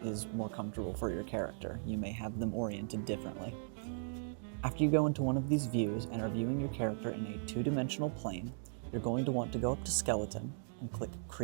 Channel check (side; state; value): left; silent; digital silence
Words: is more comfortable for your character. You may have them oriented differently. After you go into one of these views and are viewing your character in a 2-dimensional plane, you're going to want to go up to Skeleton and click